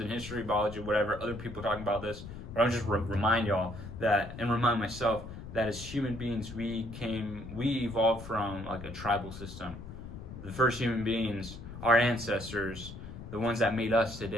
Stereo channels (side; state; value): left; noise; rumble, 12 dB below the sound